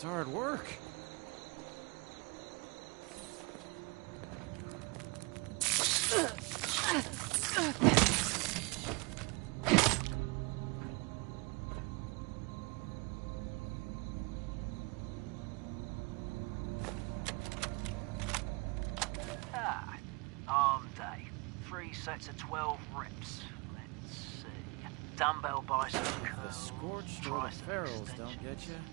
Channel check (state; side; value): quieter; left; 28.2 dB